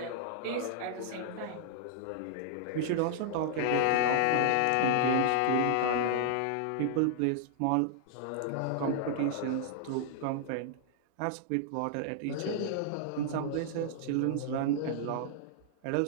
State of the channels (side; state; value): both; different; correlation -0.01